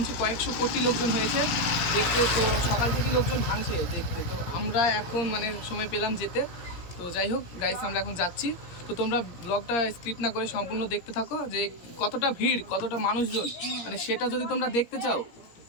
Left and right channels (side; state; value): right; late; 17 ms